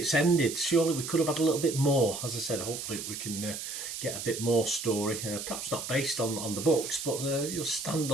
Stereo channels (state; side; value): noise; right; hiss, 7 dB below the sound